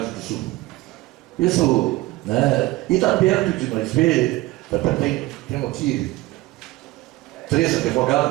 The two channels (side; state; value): left; quieter; 18.9 dB